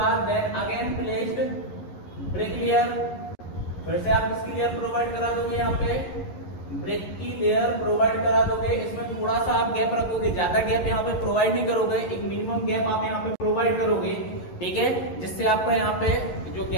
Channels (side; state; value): right; late; 11 ms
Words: then again placed brick layer. फिर से आप इसकी लेयर प्रोवाइड करा दोगे, यहाँ पे ब्रिक की लेयर प्रोवाइड करा दोगे। इसमें थोड़ा सा आप गैप रखोगे, ज्यादा गैप यहाँ पे प्रोवाइड नहीं करोगे, एक मिनिमम गैप आप यहाँ पे प्रोवाइड करोगे। ठीक है, जिससे आपका यहाँ पे जो